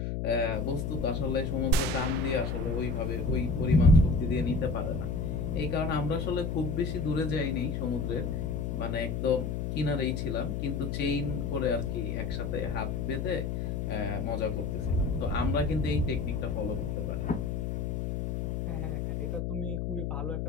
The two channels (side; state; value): left; noise; hum, 2 dB below the sound